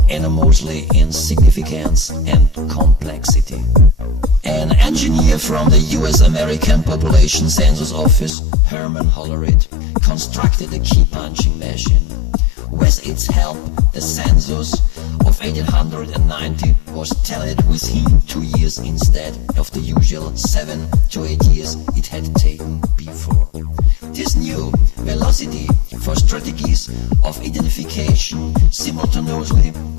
enormously in significance and complexity. An engineer from the US-American Population Census Office, Herman Hollerith, constructed a key-punching machine. With its help, the census of 1890 was tallied within 2 years instead of the usual 7 to 8 years it had taken before. This new velocity for strategies of identification simultaneously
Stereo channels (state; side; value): drops out; right; at 8.3 s